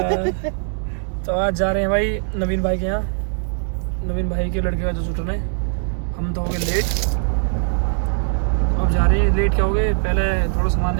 तो आज जा रहे हैं भाई नवीन भाई के यहाँ, नवीन भाई के लड़के का जो शूट में। हम तो हो गए लेट, अब जा रहे हैं। लेट क्या हो गए, पहले थोड़ा सामान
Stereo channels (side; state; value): left; silent; 60 dB below the other